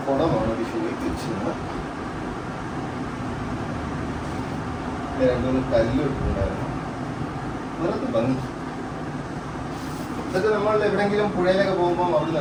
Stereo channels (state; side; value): identical; both; correlation 1.00